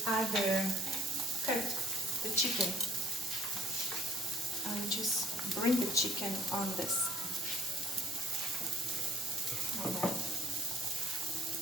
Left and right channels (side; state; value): both; normal; correlation 0.57